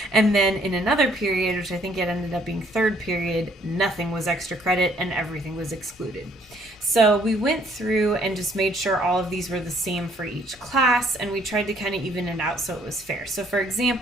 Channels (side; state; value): both; normal; correlation 0.64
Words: And then in another period, which I think it ended up being 3rd period, nothing was extra credit and everything was excluded. So we went through and just made sure all of these were the same for each class, and we tried to kind of even it out so it was fair. So for